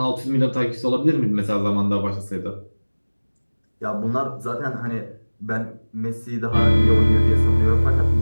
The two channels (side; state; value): both; inverted; correlation -1.00